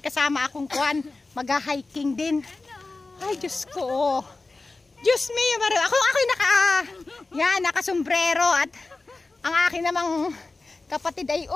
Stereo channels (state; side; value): quieter; right; 3.5 dB